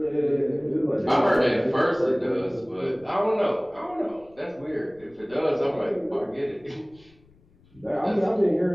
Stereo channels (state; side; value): noise; left; rumble, 29 dB below the sound